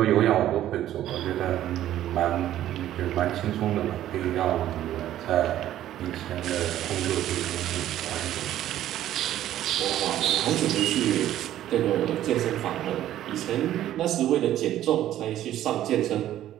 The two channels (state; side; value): quieter; left; 12.6 dB